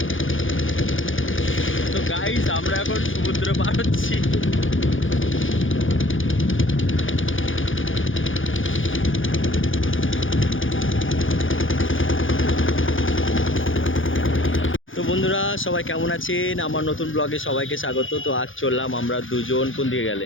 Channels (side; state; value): right; late; 0.58 ms